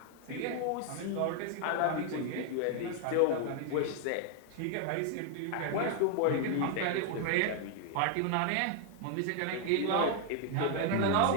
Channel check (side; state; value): both; different; correlation 0.00